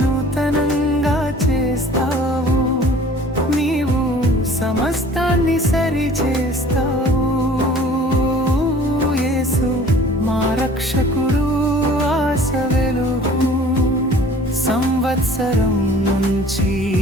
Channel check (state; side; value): normal; both; correlation 0.49